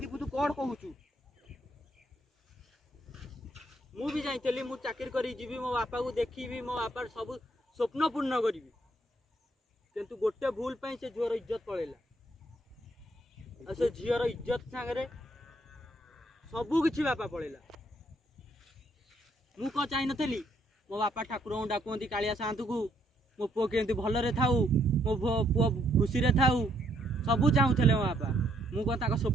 तू कौन कहूचु मु जाइली मु चाकरी करी जीवी मो बापा को देखी मो बापा सब स्वप्न पूर्ण करी किंतु गोटे भूल पाई से झीवर इज्जत पड़ेगा से झीवर इज्जत सांगे सबू किसी बापा पड़ेगा मु कौन चाह नी मो बापा ठाकुर डाकती कालिया सातु को मो पुओ केमती भलरे थाऊ मो पुओ खुशी रे थाऊ सबू चाहूले मो बापा मु कौन ताको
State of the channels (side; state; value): both; normal; correlation 0.70